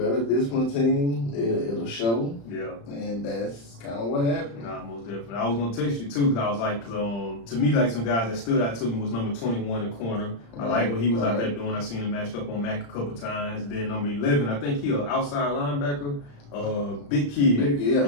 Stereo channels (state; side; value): late; right; 35 ms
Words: discipline team game, it'll show. Yeah. And that's kind of what happened. Nah, most definitely. I was gonna text you too, because I was like, to me, like some guys that stood out to me was number 21 in the corner. I like what he was out there doing. I seen him matched up on Mac a couple times. And then number 11, I think he an outside linebacker. Big kid.